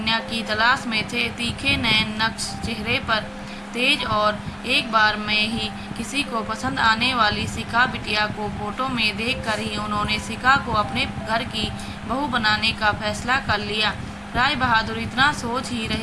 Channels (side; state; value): both; identical; correlation 1.00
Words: की तलाश में थे। तीखे नयन नक्श चेहरे पर तेज और एक बार में ही किसी को पसंद आने वाली शिखा बिटिया को फोटो में देखकर ही उन्होंने शिखा को अपने घर की बहू बनाने का फैसला कर लिया। राय बहादुर इतना सोच ही